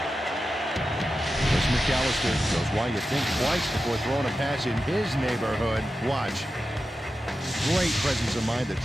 McAllister knows why you think twice before throwing a pass in his neighborhood. Watch. Great presence of mind to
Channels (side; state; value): both; normal; correlation 0.91